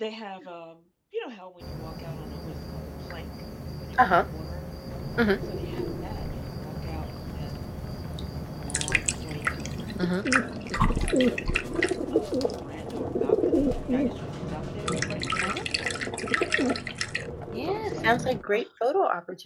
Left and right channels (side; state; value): both; identical; correlation 1.00